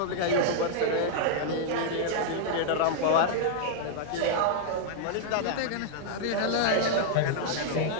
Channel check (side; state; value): both; different; correlation -0.01